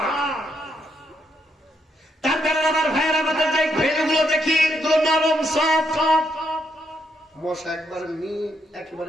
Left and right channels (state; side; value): normal; both; correlation 0.77